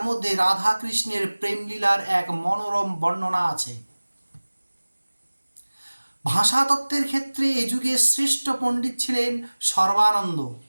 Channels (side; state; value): both; inverted; correlation -1.00